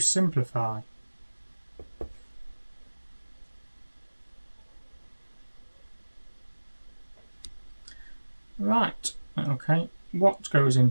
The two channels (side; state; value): both; inverted; correlation -1.00